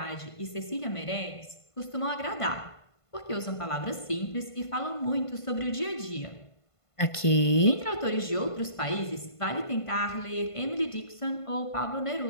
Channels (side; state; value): right; late; 1.5 ms